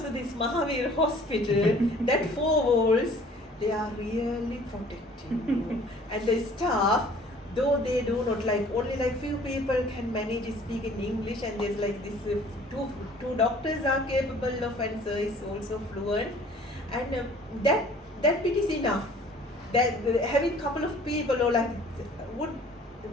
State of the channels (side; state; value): both; normal; correlation 0.52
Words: to this Mahavir hospital, that four walls, they are really protecting you. And the staff, though they do not like, only like few people can manage to speak in English, and there's like this two doctors are capable of, and sir is also fluent, and that bit is enough. That having couple of people or like would